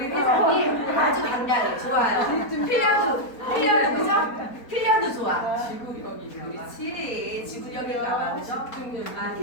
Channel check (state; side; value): late; right; 4.2 ms